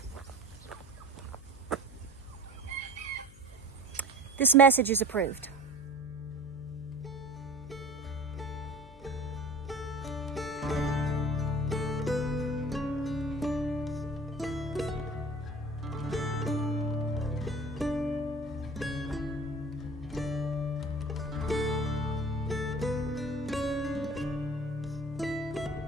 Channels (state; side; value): noise; left; hum, 20 dB below the sound